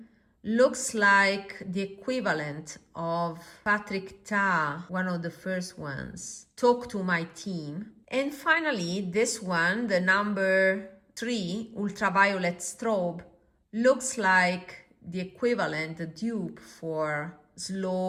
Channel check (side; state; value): both; identical; correlation 1.00